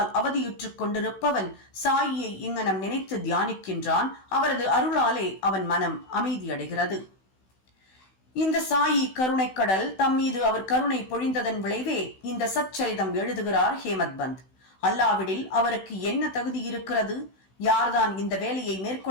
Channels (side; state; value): right; late; 16 ms